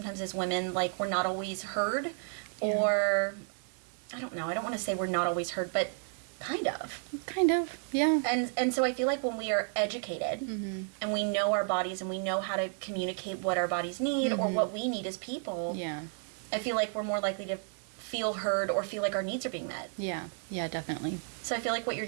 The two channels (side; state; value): left; silent; 56 dB below the other